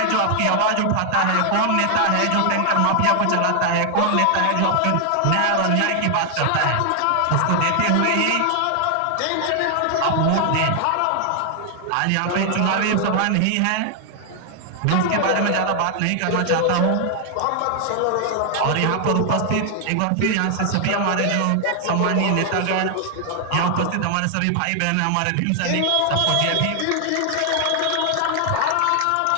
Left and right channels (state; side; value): different; both; correlation 0.00